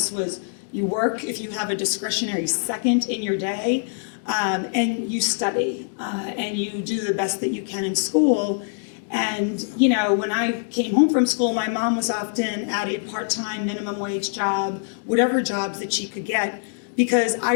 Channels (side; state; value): right; silent; digital silence